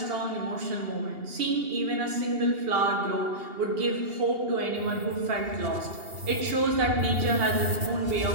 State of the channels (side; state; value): left; late; 2.8 ms